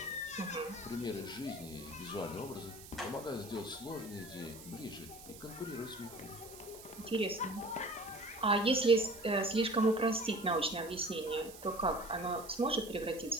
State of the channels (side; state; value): right; noise; hiss, 16 dB below the sound